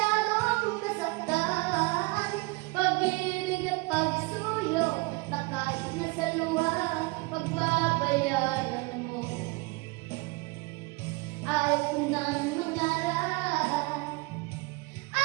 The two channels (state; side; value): quieter; left; 25.8 dB